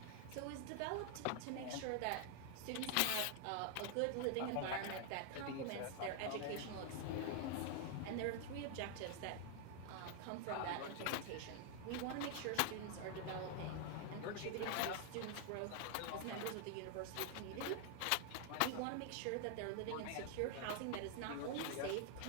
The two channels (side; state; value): both; different; correlation 0.00